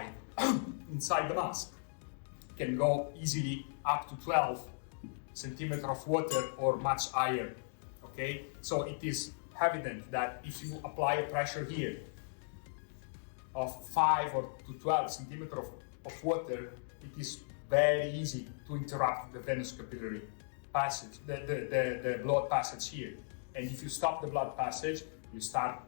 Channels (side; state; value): right; silent; digital silence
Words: inside the mask, can go easily up to 12 centimeter of water or much higher. Okay, so it is evident that if you apply a pressure here of 5 or to 12 centimeter of water, it is very easy to interrupt the venous capillary passage, the blood passage here. And if you stop the blood passage, you start